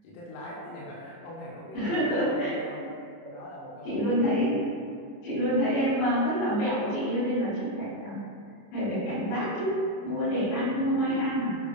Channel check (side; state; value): right; late; 29 ms